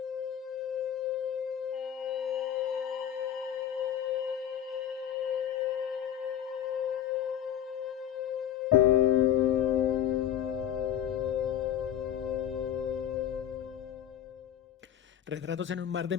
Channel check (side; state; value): right; quieter; 10.1 dB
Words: Retratos en un mar de